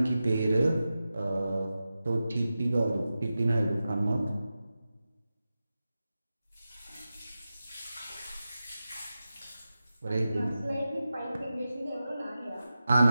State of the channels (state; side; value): inverted; both; correlation -0.93